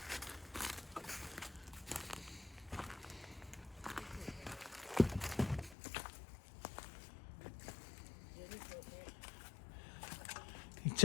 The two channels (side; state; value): right; drops out; at 5.8 s